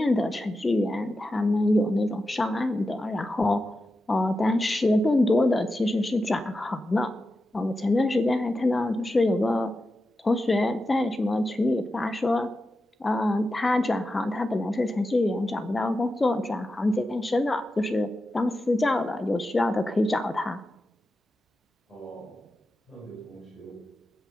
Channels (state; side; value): normal; both; correlation 0.91